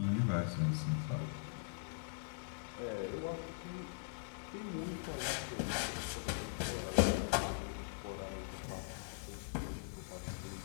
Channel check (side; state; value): right; silent; digital silence